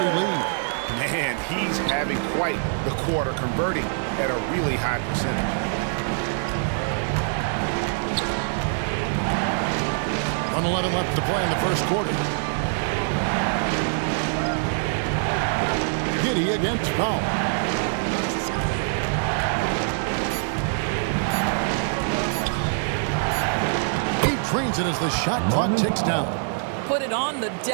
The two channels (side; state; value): left; silent; digital silence